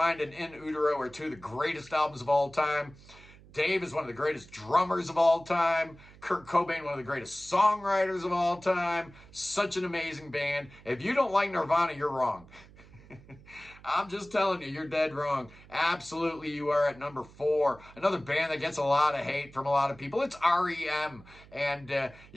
and In Utero are 2 of the greatest albums of all time. Dave is one of the greatest drummers of all time. Kurt Cobain, one of the greatest songwriters of all time. Such an amazing band. If you don't like Nirvana, you're wrong. I'm just telling you, you're dead wrong. Absolutely, you are at number 4. Another band that gets a lot of hate from a lot of people. It's REM. And,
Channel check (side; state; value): right; noise; hum, 22 dB below the sound